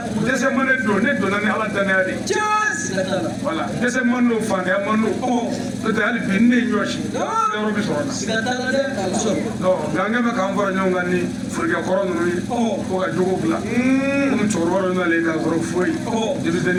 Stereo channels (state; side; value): identical; both; correlation 1.00